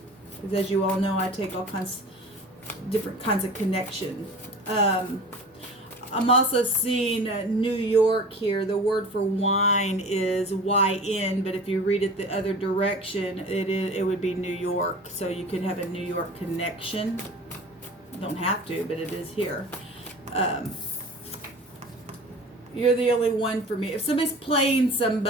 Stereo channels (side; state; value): both; normal; correlation 0.39